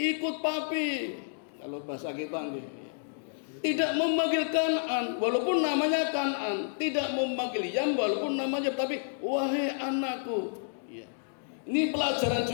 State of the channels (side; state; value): right; silent; digital silence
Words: papi." Kalau bahasa kita nggih. Tidak memanggil Kan'an walaupun namanya Kan'an, tidak memanggil Yam walaupun namanya, tapi wahai anakku. Ya. Ini pelajaran